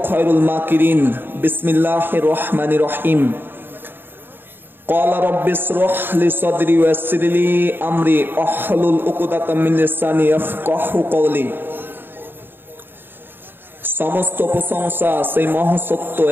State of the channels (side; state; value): left; late; 0.097 ms